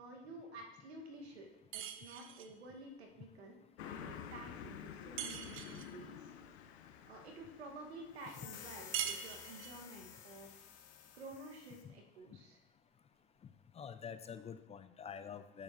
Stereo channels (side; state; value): both; normal; correlation 0.06